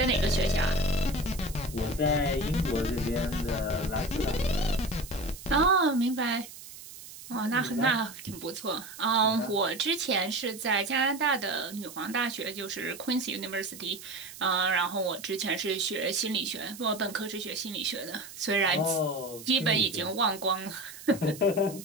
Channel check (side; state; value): right; noise; hiss, 15 dB below the sound